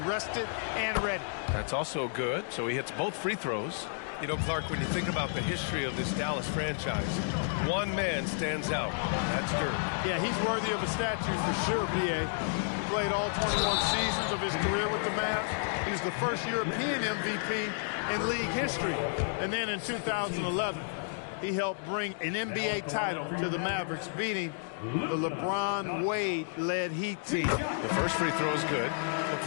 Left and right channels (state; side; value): silent; right; digital silence